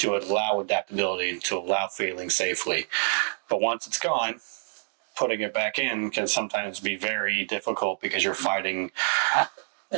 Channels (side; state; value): left; silent; digital silence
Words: allow adaptability and to allow failing safely. But once it's gone, putting it back in can sometimes be very difficult because you're fighting